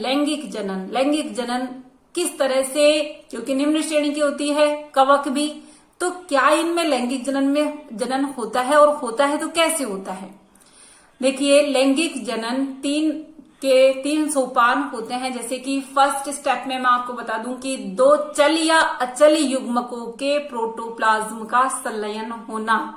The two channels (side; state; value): both; identical; correlation 1.00